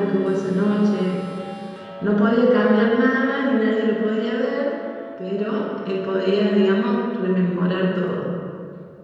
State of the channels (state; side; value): identical; both; correlation 1.00